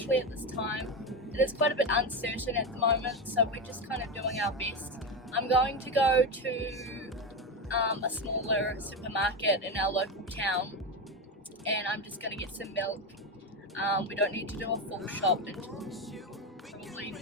at this time. It is quite a bit uncertain at the moment, so we're just kind of doing our best. I'm going to go to a smaller supermarket in our local town, and I'm just going to get some milk. We don't need to do a full shop until probably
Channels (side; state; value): both; normal; correlation 0.16